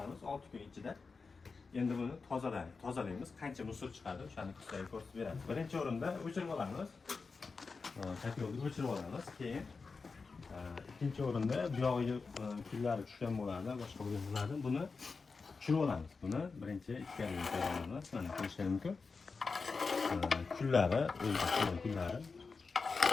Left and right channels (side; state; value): right; quieter; 4.5 dB